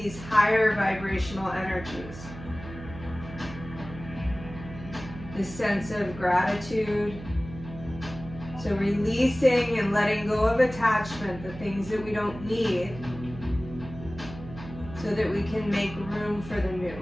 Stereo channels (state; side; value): noise; right; hum, 13 dB below the sound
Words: higher vibrational energies. This sense of gratitude. So releasing and letting go of attachment, the things that we don't need, so that we can make room for the new.